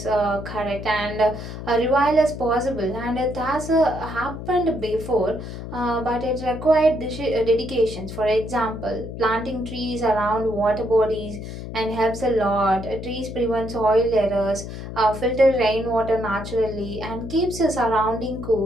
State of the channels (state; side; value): noise; left; hum, 9 dB below the sound